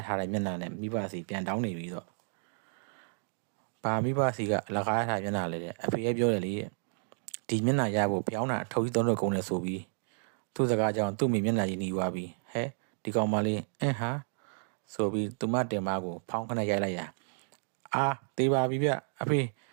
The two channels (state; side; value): silent; left; digital silence